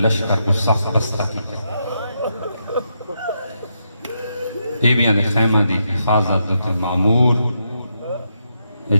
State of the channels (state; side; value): inverted; both; correlation -0.82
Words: کو سخت بستہ کی بیبیاں دے خیمہ دی حفاظت دے معمور یہ